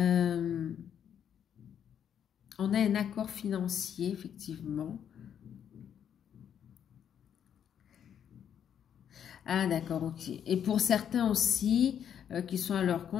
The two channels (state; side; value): quieter; right; 8.9 dB